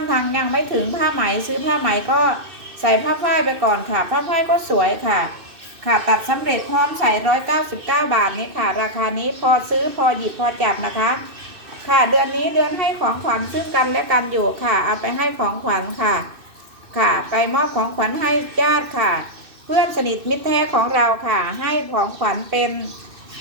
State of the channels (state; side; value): late; left; 2.6 ms